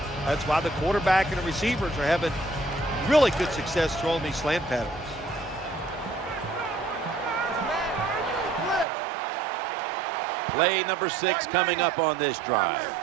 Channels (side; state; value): left; drops out; at 8.8 s